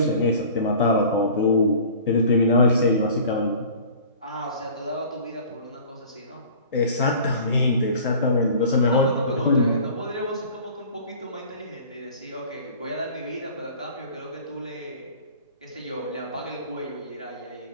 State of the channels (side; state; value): both; inverted; correlation -0.45